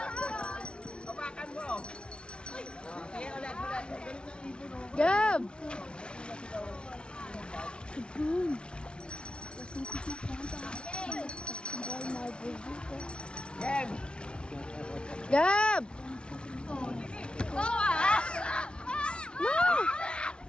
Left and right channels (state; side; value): late; right; 0.057 ms